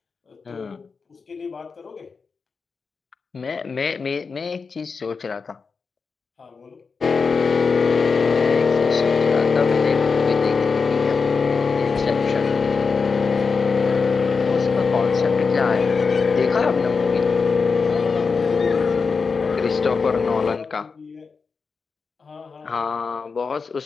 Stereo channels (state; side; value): quieter; right; 5.0 dB